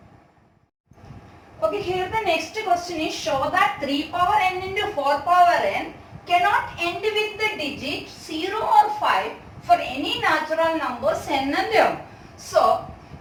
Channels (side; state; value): both; identical; correlation 1.00